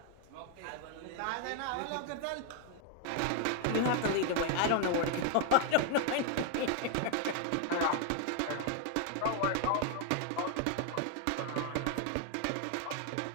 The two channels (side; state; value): both; different; correlation 0.00